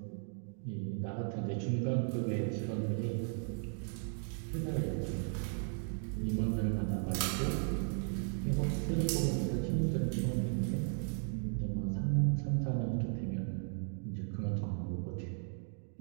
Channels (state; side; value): silent; left; 54 dB below the other